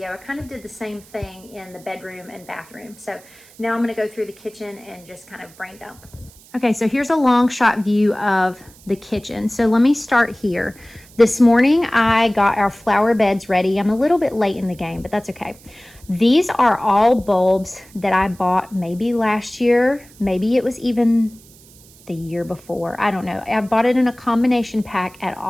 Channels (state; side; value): noise; right; hiss, 25 dB below the sound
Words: I kind of did the same thing in the bedroom and bathroom. So now I'm gonna go through the kitchen and just kind of brain dump. Okay, so here's a long shot view of the kitchen. So let me start here. This morning, I got our flower beds ready. I'm a little bit late in the game, but that's okay. These are all bulbs that I bought maybe last year. Maybe it was even the year before. I don't know. I bought it in a combination pack at